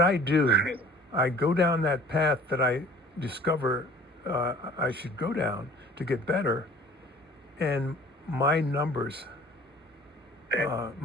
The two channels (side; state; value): both; normal; correlation 0.49